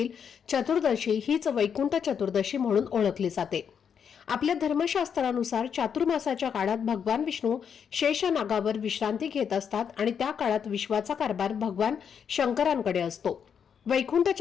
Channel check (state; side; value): quieter; right; 7.4 dB